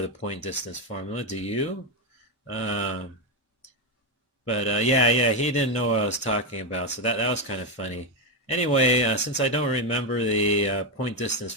the point distance formula. Do you? But yeah, he didn't know what I was talking about, so that was kind of funny. Anyway, since I don't remember the point distance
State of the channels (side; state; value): both; normal; correlation 0.07